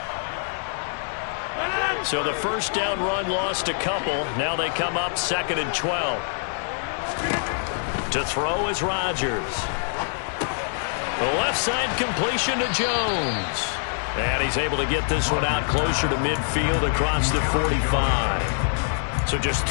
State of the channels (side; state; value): right; silent; digital silence